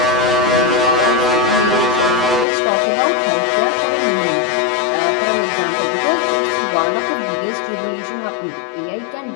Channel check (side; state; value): right; drops out; at 2.5 s